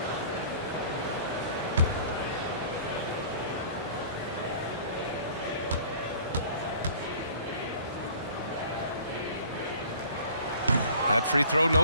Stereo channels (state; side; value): inverted; both; correlation -0.49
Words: That free throw, no